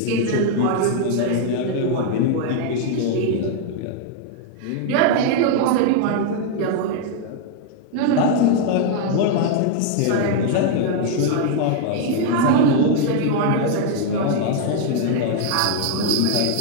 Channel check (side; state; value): both; different; correlation 0.00